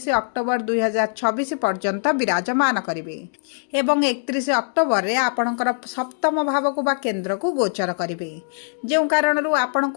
अक्टोबर 2026 पर्यंत विराजमान करिवे एवं 31 अक्टोबर रे आपणकर सप्तम भाव को बा केंद्र को गोचर करिवे, जेउ कारणरू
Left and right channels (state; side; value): silent; right; digital silence